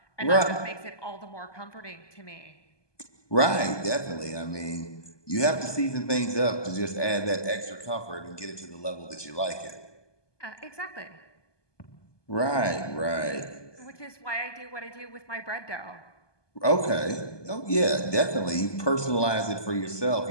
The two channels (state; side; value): late; right; 1.2 ms